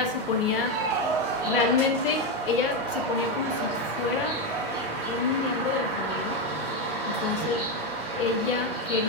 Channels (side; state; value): both; normal; correlation 0.09